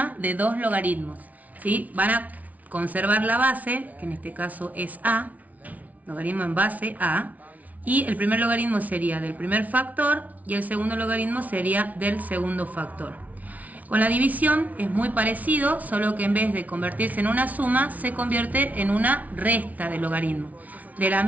de dos logaritmos, ¿sí? Van a conservar la base, que en este caso es a, logaritmo en base a, y el primer logaritmo sería del primer factor y el segundo logaritmo sería del segundo factor. Con la división es muy parecido, solo que en vez de convertirse en una suma, se convierte en una resta de logaritmo. De la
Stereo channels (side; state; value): left; late; 0.072 ms